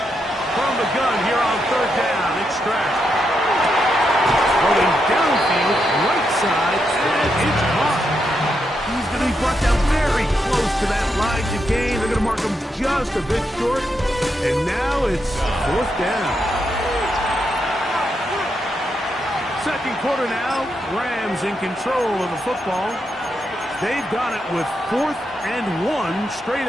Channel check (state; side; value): normal; both; correlation 0.82